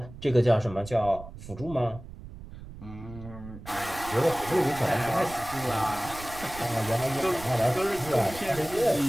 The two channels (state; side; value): noise; right; rumble, 15 dB below the sound